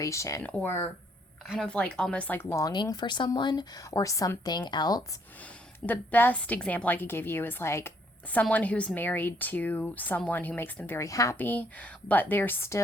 or kind of like almost like longing for someone or something else. The best example I could give you is like someone who's married to someone who makes them very happy, but they're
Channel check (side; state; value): both; normal; correlation 0.68